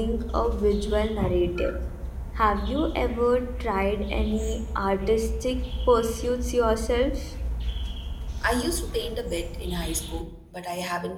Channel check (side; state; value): both; identical; correlation 1.00